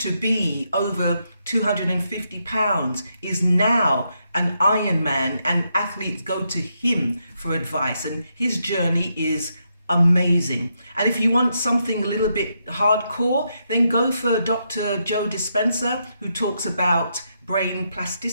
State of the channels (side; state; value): both; inverted; correlation -0.80